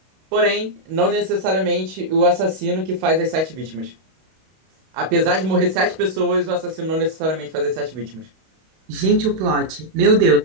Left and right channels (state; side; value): late; left; 32 ms